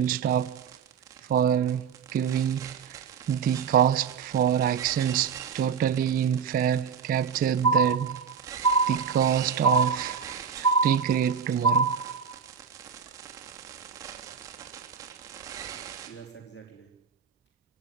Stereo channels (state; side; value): quieter; left; 6.8 dB